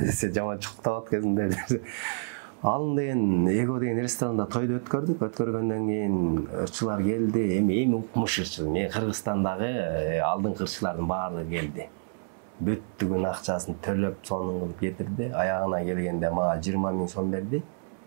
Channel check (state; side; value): silent; left; 59 dB below the other